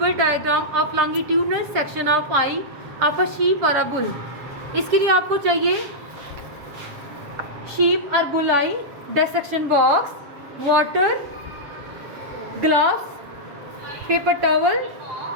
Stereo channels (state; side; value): late; left; 7.5 ms